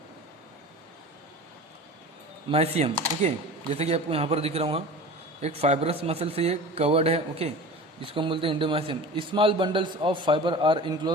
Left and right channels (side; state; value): both; normal; correlation 0.36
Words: ओके, जैसे कि आपको यहाँ पर दिख रहा हूँ एक फाइब्रस मसल से ये कवर्ड है। ओके, जिसको हम बोलते हैं endomysium. Small bundles of fibre are